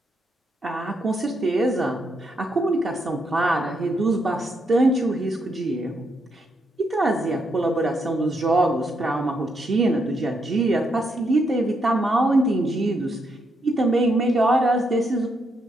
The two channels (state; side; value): normal; both; correlation 0.78